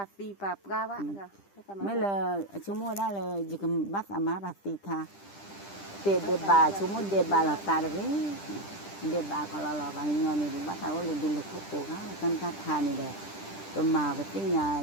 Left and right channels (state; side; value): late; right; 10 ms